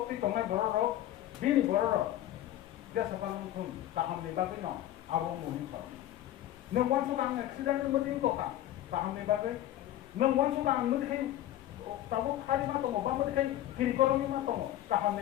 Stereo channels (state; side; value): quieter; right; 13.2 dB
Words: tonga boro bini boro dia sakal musun taham ni bagai no abong munin sa nang wan sudang accident ni mutin to ka taham ni bagai nang wan sudang mutin tabu khali ma to ba mutin kiri koromi ma to taham